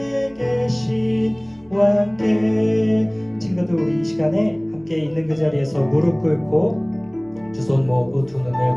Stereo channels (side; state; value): right; noise; hum, 28 dB below the sound